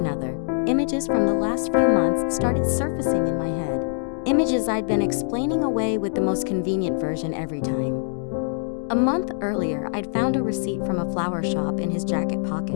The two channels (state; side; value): silent; right; digital silence